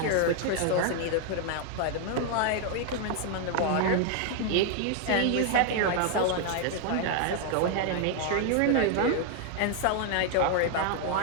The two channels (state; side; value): different; both; correlation 0.00